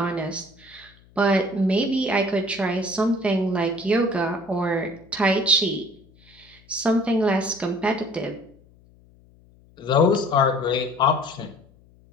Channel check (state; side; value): noise; left; hum, 28 dB below the sound